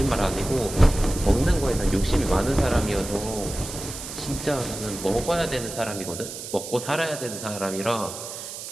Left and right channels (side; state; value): right; noise; hiss, 9 dB below the sound